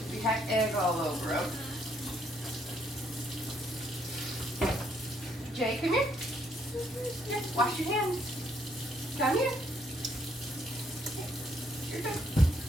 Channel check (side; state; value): both; normal; correlation 0.70